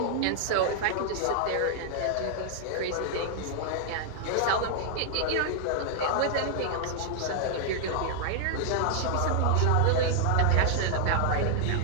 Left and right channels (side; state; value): both; different; correlation -0.01